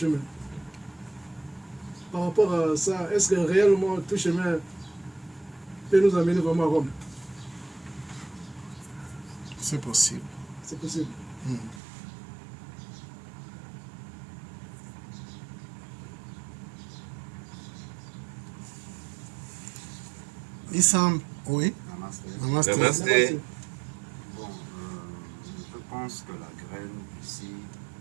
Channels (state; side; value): drops out; left; at 11.8 s